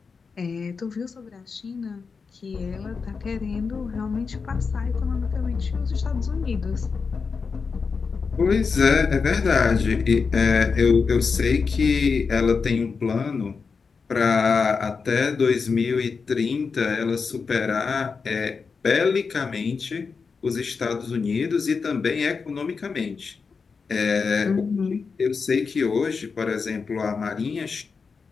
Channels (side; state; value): right; quieter; 5.1 dB